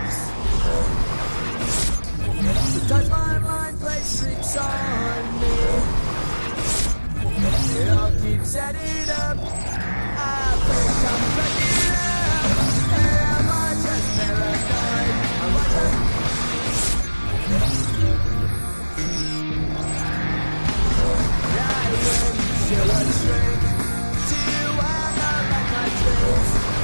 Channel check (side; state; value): both; inverted; correlation -1.00